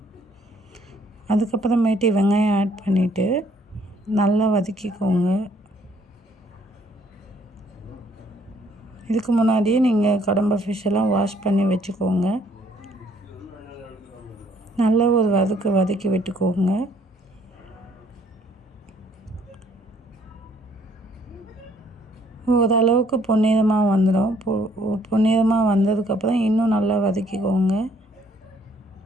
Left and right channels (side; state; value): both; normal; correlation 0.64